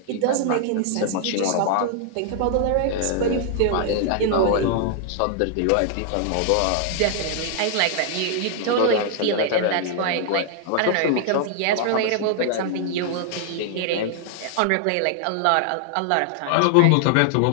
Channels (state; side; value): different; both; correlation 0.00